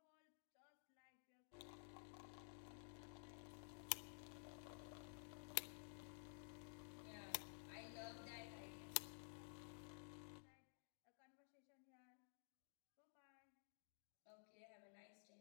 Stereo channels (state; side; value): silent; right; digital silence